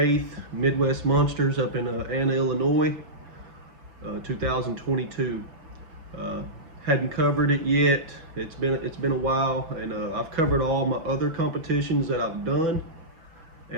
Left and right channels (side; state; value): left; late; 6.0 ms